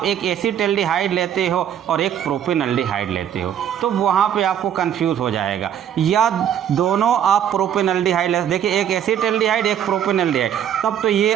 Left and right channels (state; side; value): quieter; left; 9.6 dB